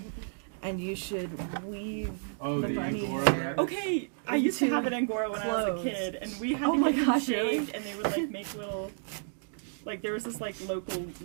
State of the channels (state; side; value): silent; left; digital silence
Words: and you should weave Oh, the the bunny Angora hair. rabbit? Okay, I used to have an Angora when I was Clothes. a kid, and we had Oh to my get them gosh, shaved, really? and they would like make little, like there was this like local